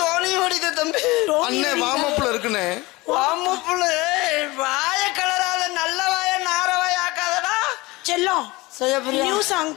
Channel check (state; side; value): quieter; right; 22.0 dB